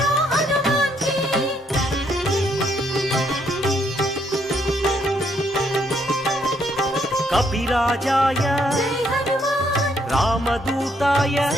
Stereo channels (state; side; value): normal; both; correlation 0.72